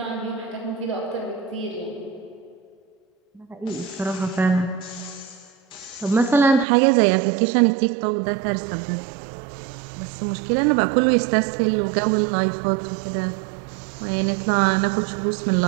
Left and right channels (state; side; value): drops out; left; at 6.7 s